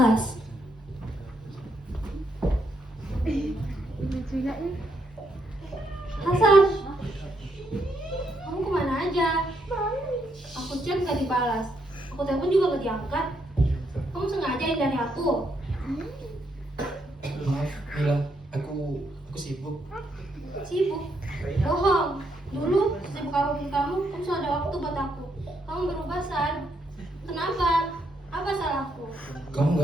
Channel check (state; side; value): normal; both; correlation 0.76